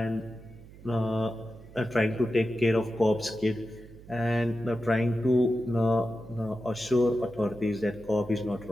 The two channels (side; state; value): right; noise; hum, 19 dB below the sound